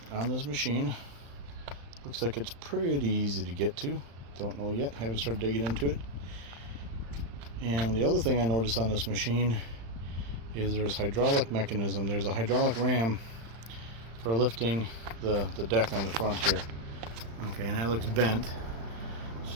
on this machine. Looks like it's pretty easy to get to. Don't know yet, haven't started digging into it. And the other thing I noticed on this machine is there's hydraulic mechanism. There's a hydraulic ram for lifting the deck on the front here. Okay, and that looks bent,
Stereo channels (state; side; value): late; left; 35 ms